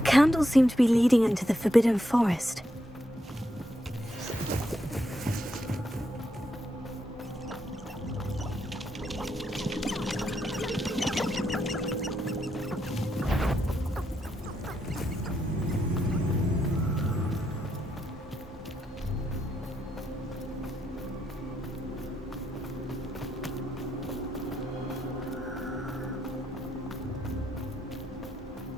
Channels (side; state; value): both; normal; correlation 0.80